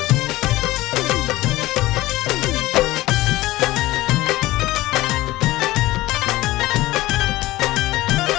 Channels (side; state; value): right; quieter; 17.9 dB